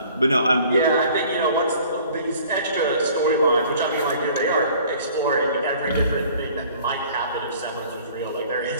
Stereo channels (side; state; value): both; inverted; correlation -0.52